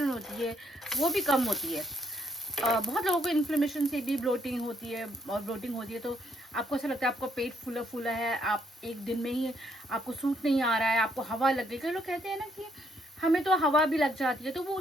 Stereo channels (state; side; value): normal; both; correlation 0.71